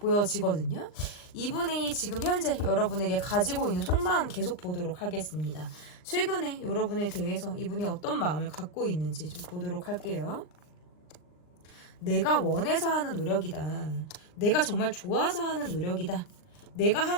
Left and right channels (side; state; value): right; late; 39 ms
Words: 이분이 지금 현재 여러분에게 가지고 있는 속마음 계속 보도록 하겠습니다. 최근에 여러분에 대해서 이분이 어떤 마음을 갖고 있는지 좀 보도록 할게요. 내가 원해서 하는 노력이다. 내가 정말 좋아서 하는 노력이다. 내가